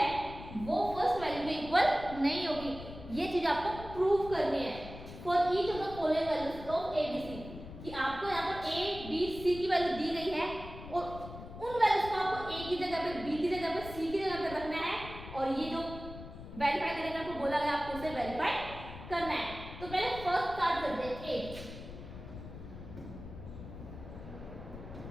वो फर्स्ट वैल्यू में इक्वल नहीं होगी। ये चीज आपको प्रूव करनी है for each of the following values of a b c, कि आपको यहाँ पर a b c की वैल्यू दी गई है और उन वैल्यूज को आपको a की जगह पे b की जगह पे c की जगह पे रखना है, और ये जो वेरीफाई करने का आपको बोला गया आपको उसे वेरीफाई करना है। तो पहले फर्स्ट स्टार्ट करते हैं a,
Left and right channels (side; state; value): left; noise; rumble, 12 dB below the sound